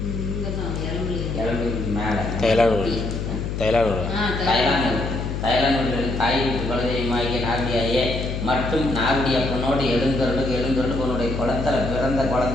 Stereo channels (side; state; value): left; noise; hum, 3 dB below the sound